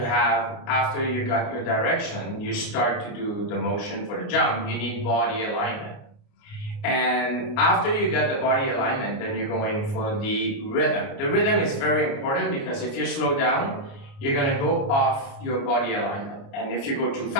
have, after you got your direction, you start to do the motion for the jump, you need body alignment. And after you get the body alignment, then you're going for the rhythm. The rhythm is very important because if you slow down, you're gonna go off your body alignment. And if you go too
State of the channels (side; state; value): right; late; 29 ms